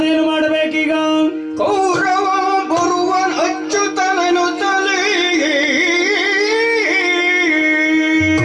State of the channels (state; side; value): identical; both; correlation 1.00